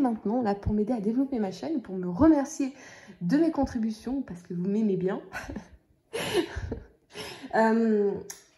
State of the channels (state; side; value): identical; both; correlation 1.00